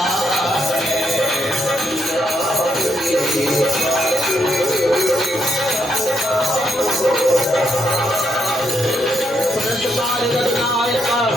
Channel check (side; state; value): both; normal; correlation 0.79